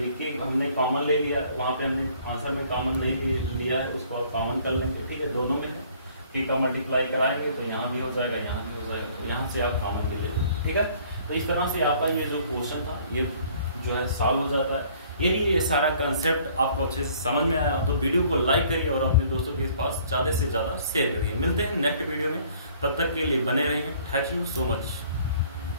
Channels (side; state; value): both; inverted; correlation -0.57